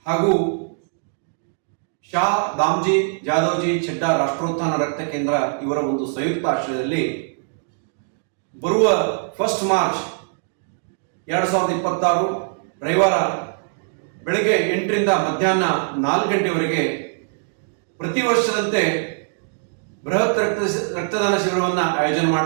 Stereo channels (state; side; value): silent; left; digital silence